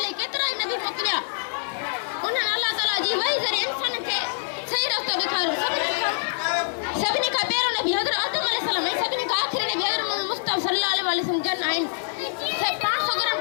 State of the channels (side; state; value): right; silent; digital silence